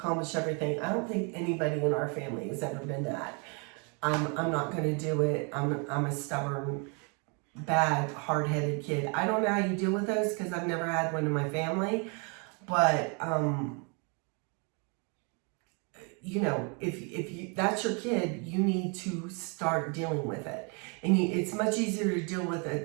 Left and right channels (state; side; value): quieter; left; 34.6 dB